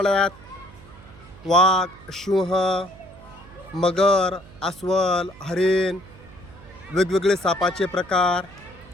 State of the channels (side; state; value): right; noise; hum, 21 dB below the sound